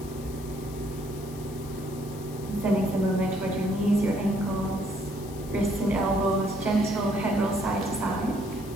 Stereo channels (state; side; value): noise; left; hiss, 18 dB below the sound